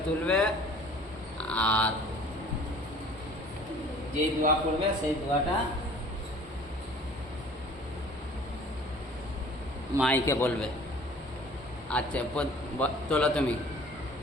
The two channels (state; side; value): normal; both; correlation 0.49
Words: তুলবে। আর যেই দোয়া করবে সেই দোয়াটা মাইকে বলবে। আচ্ছা তোলো, তুমি